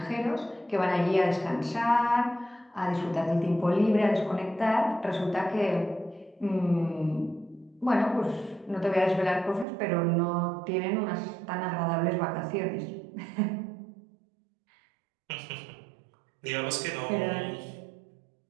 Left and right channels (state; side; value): drops out; left; at 9.7 s